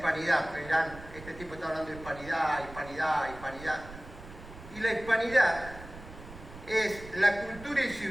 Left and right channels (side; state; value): right; noise; rumble, 16 dB below the sound